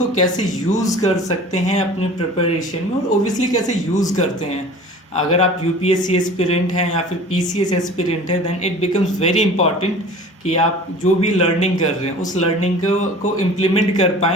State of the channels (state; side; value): normal; both; correlation 0.42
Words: कैसे यूज़ कर सकते हैं अपने प्रिपरेशन में, और ओबियसली कैसे यूज़ करते हैं। अगर आप यूपीएससी एस्पिरेंट हैं या फिर पीसीएस एस्पिरेंट है, then it becomes very important कि आप जो भी लर्निंग कर रहे हैं उस लर्निंग को इम्प्लीमेंट कर